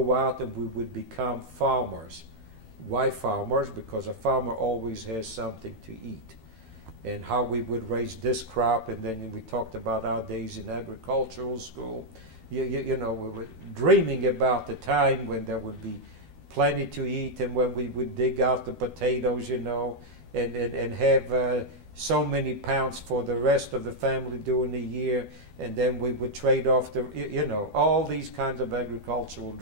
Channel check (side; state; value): left; late; 12 ms